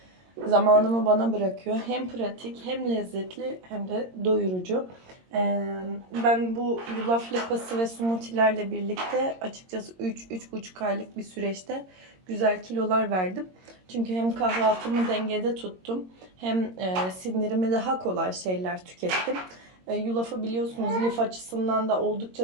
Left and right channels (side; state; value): left; late; 22 ms